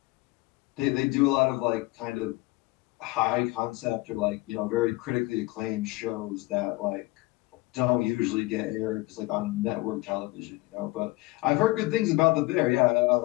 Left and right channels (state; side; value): quieter; right; 21.1 dB